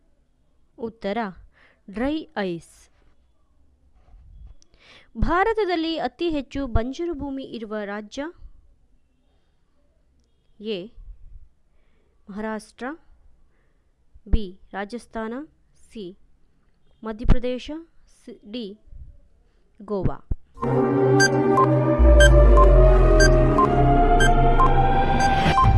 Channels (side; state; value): both; identical; correlation 1.00